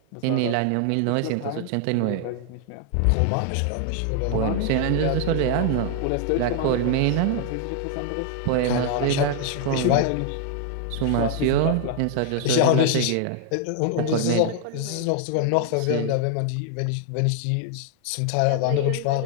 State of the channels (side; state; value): both; different; correlation 0.00